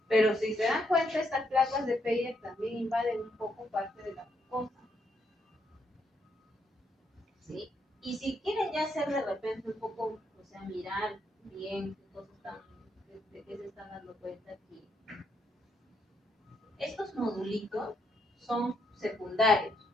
Pero si se dan cuenta, estas placas de Peyer también invaden un poco parte de la mucosa. ¿Sí? Y si quieren ya hacer de repente un poco, o sea, mirar bien qué cosas están, de qué se están dando cuenta aquí. Estos nodulitos son secundarios,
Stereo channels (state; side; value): normal; both; correlation 0.76